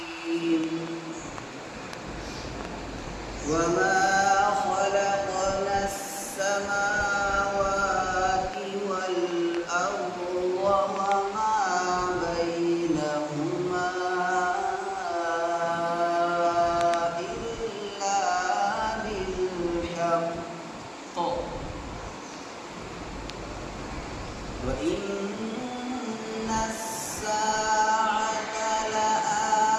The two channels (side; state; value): both; identical; correlation 1.00